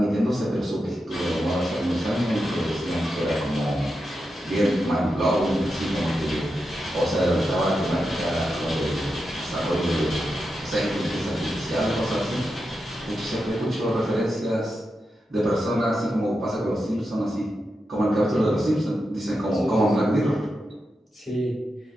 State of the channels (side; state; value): both; normal; correlation 0.88